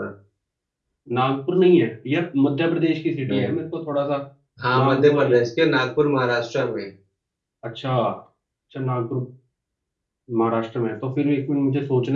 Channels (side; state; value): both; identical; correlation 1.00